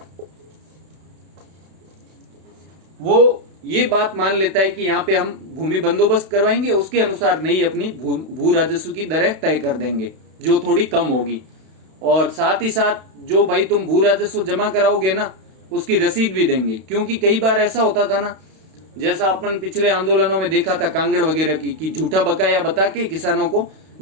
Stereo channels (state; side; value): late; left; 32 ms